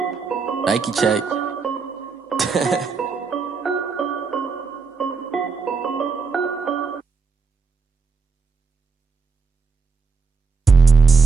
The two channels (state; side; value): quieter; left; 4.8 dB